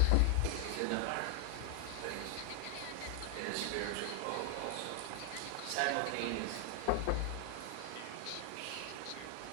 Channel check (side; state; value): both; different; correlation 0.00